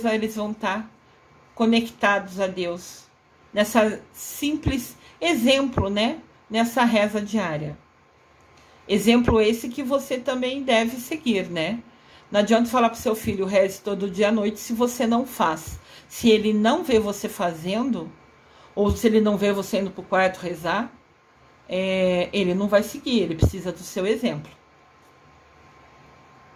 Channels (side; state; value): both; identical; correlation 1.00